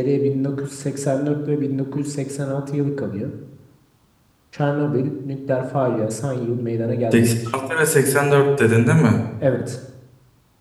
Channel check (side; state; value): both; identical; correlation 1.00